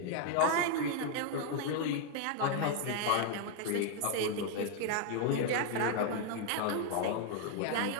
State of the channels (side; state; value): both; different; correlation 0.00